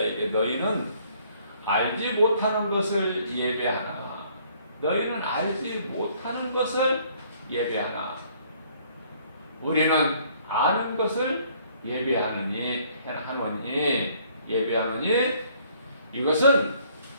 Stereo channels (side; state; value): both; inverted; correlation -0.62